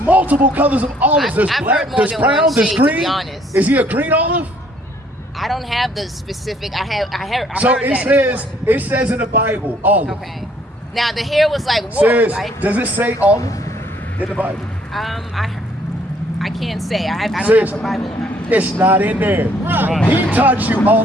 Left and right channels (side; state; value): both; normal; correlation 0.63